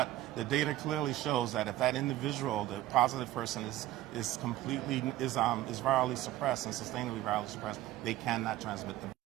the data clearly shows that if that individual, the positive person, is virally suppressed and sustainably virally suppressed, they cannot transmit the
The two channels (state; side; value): quieter; left; 15.1 dB